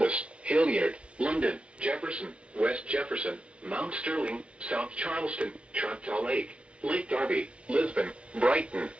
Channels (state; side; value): late; left; 0.059 ms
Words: Hilliard, London, Jefferson, West Jefferson, Mount Sterling, South Charleston, Choctaw Lake, Lake Darby, Lisbon, Brighton,